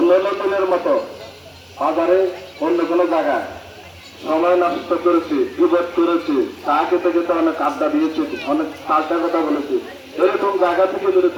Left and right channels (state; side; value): identical; both; correlation 1.00